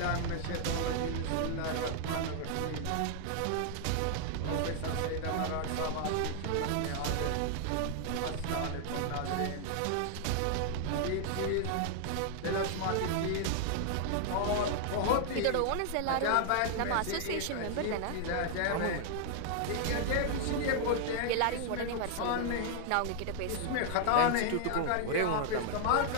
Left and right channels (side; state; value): both; different; correlation 0.00